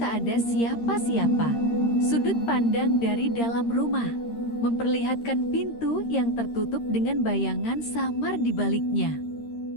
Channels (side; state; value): right; late; 13 ms